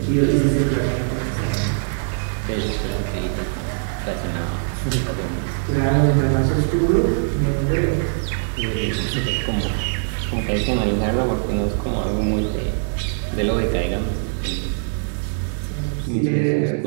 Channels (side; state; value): left; silent; 64 dB below the other